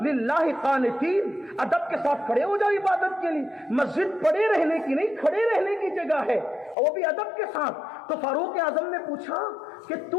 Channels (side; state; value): right; drops out; at 6.8 s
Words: للہ قانتین، ادب کے ساتھ کھڑے ہو جاؤ عبادت کے لیے۔ مسجد پڑے رہنے کی نہیں، کھڑے رہنے کی جگہ ہے، اور وہ بھی ادب کے ساتھ۔ تو فاروق اعظم نے پوچھا کہ تو